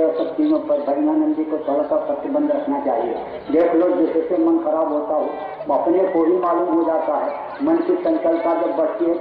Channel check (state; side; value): identical; both; correlation 1.00